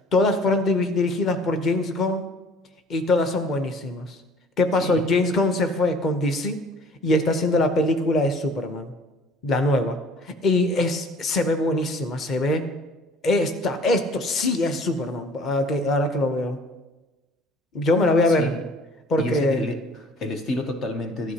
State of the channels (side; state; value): both; normal; correlation 0.51